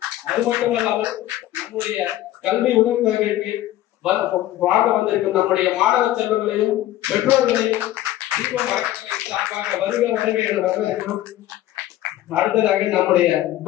அது மட்டும் இல்லாமல் நம்முடைய கல்வி உதவித்தொகைக்கு வாங்க வந்திருக்கும் நம்முடைய மாணவ செல்வங்களையும் பெற்றோர்களையும் தீபம் அறக்கட்டளையின் சார்பாக வருக வருக என வரவேற்கிறோம். அடுத்ததாக நம்முடைய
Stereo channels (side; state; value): right; quieter; 14.2 dB